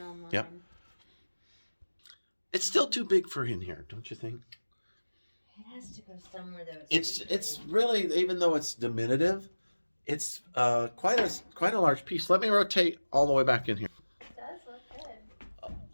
Yep. It's still too big for in here, don't you think? It has to go somewhere though. It's really, even though it's diminutive, it's quite a large piece. Let me rotate all the way back in here. It does look good.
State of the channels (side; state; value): both; inverted; correlation -1.00